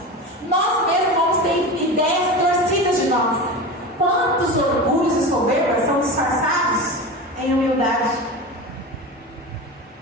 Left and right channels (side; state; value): both; normal; correlation 0.27